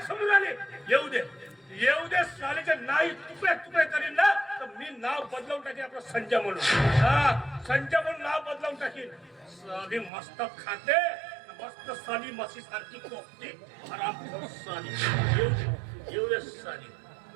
समजून आली. येऊ दे सालीचे नाही तुकडे करीन ना तर मी नाव बदलवून टाकेन. आपलं संजय म्हणून. संजय म्हणून नाव बदलवून टाकेन. साली मस्त खाते, मस्त साली मसी सारखी कोपते. हरामखोर साली. येऊ दे साली.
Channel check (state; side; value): drops out; left; at 10.1 s